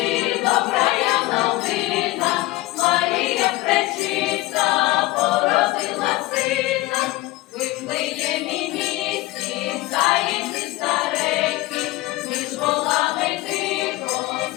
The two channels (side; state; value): right; quieter; 18.8 dB